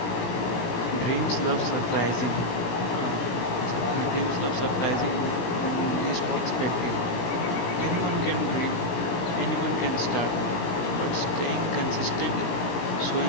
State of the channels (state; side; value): late; right; 17 ms